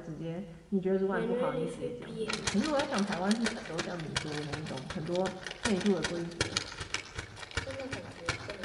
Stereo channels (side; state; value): both; identical; correlation 1.00